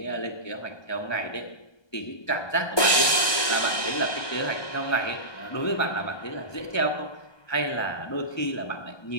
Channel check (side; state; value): right; late; 1.2 ms